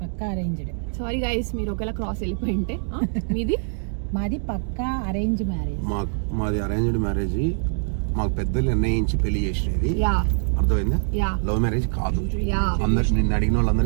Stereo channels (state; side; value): silent; left; digital silence